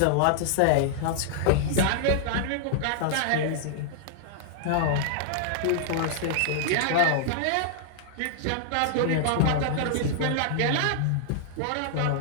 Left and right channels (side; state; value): both; different; correlation -0.01